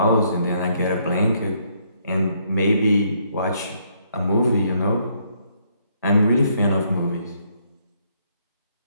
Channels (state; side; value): inverted; both; correlation -0.71